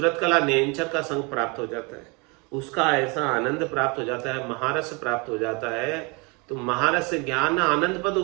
कला नेंचर का संग प्राप्त हो जाता है, उसका ऐसा आनंद प्राप्त हो जाता है, महारस प्राप्त हो जाता है। तो महारस ज्ञान आनंद पद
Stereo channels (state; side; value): quieter; left; 29.7 dB